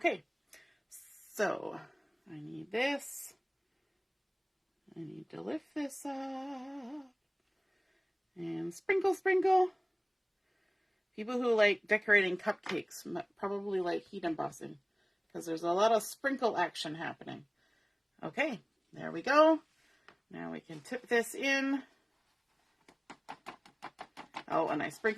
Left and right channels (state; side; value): identical; both; correlation 1.00